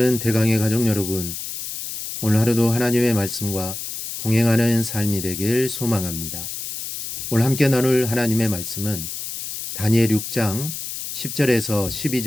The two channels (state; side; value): noise; left; hiss, 7 dB below the sound